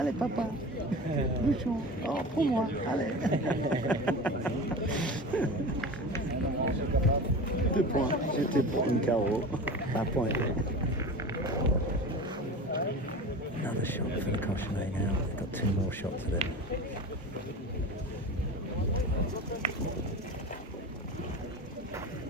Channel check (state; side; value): normal; both; correlation 0.32